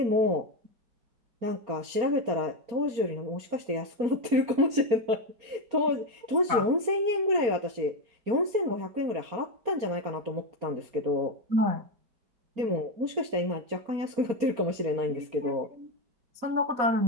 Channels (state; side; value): late; left; 4.3 ms